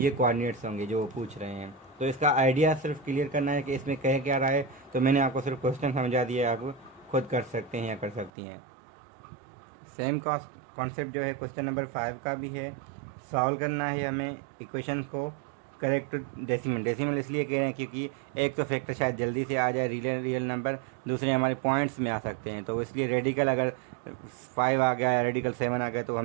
ये कोऑर्डिनेट्स होंगे जो वो पूछ रहे हैं। तो इसका आइडिया सिर्फ क्लियर करना है कि इसमें कह क्या रहा है, तो मैंने आपको सिर्फ क्वेश्चन समझा दिया है, आप खुद कर सकते हैं या कर सकती हैं। सेम कॉन्सेप्ट जो है क्वेश्चन नंबर 5 का भी है, सॉल्व करना है हमें इक्वेशन को करेक्ट डेसिमल इसलिए कह रहे हैं क्योंकि एक तो फैक्टर शायद जल्दी से आ जाए रियल नंबर, दूसरे हमारे पॉइंट्स में आ सकते हैं, तो इसलिए रेडिकल अगर 5 आ गया या रेडिकल 7 आ गया तो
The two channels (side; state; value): left; drops out; at 8.3 s